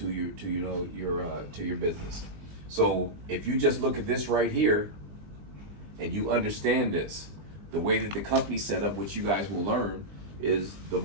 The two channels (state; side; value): late; left; 20 ms